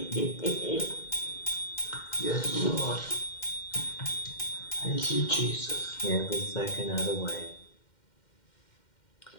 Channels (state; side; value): late; right; 2.1 ms